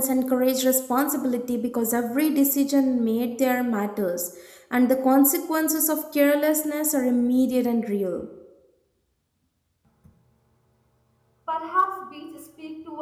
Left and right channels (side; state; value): both; identical; correlation 1.00